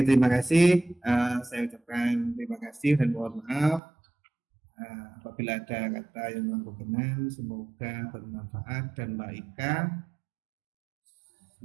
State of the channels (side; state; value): left; drops out; at 3.8 s